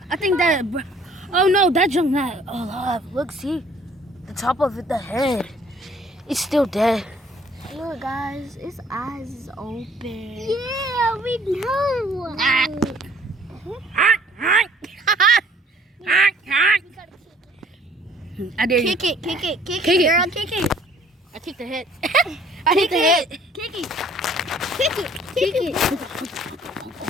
I think that. Oh no, that junk not alive. Look, see, the top of it, the head. It's still dead. Look, guys, his eyes is open. Yeah, we know. I dare you. Kick it, Kick it. girl, kick it. I kicked the head. I hit the head. Kick it.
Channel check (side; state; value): both; normal; correlation 0.58